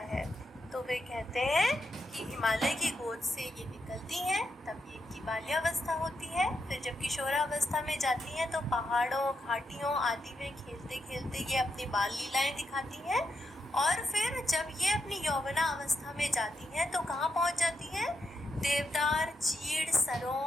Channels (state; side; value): normal; both; correlation 0.83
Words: है। तो वे कहते हैं कि हिमालय की गोद से ये निकलती हैं, तब ये इनकी बाल्यावस्था होती है। फिर जब किशोरावस्था में जाती हैं तो पहाड़ों, घाटियों आदि में खेलते खेलते ये अपनी बाल लीलाएं दिखाती हैं। और फिर जब ये अपनी यौवना अवस्था में जाती हैं तो कहाँ पहुँच जाती हैं? देवदार, चीड़,